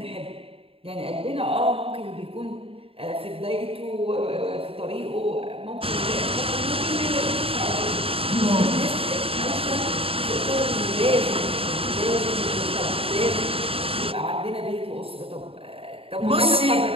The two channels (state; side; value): late; left; 0.27 ms